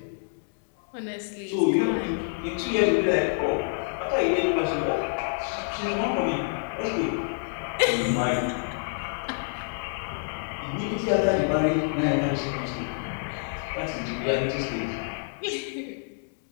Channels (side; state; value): right; silent; 60 dB below the other